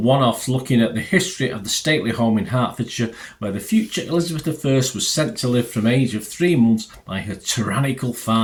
looking at the history of the stately home in Hertfordshire, where the future Elizabeth I was sent to live from age of 3 months by her tyrannical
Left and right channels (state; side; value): identical; both; correlation 1.00